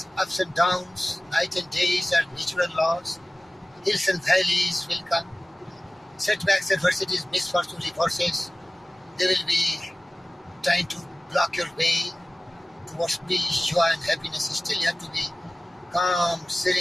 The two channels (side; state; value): both; normal; correlation 0.97